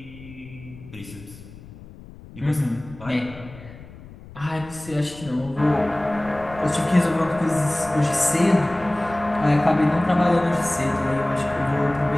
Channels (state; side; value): noise; left; rumble, 18 dB below the sound